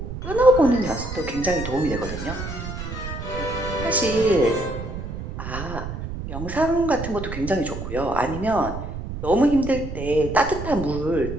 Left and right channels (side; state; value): right; noise; rumble, 7 dB below the sound